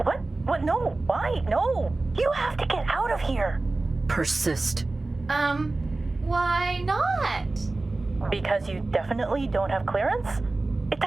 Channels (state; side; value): quieter; left; 3.2 dB